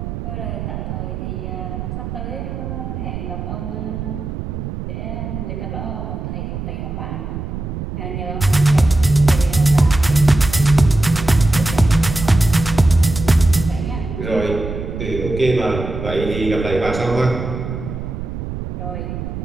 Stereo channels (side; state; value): right; noise; rumble, 6 dB below the sound